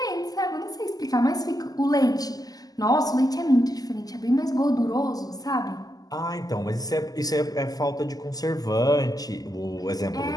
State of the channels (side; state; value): right; late; 0.18 ms